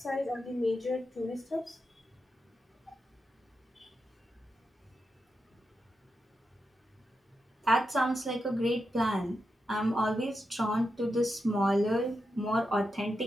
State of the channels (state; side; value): normal; both; correlation 0.87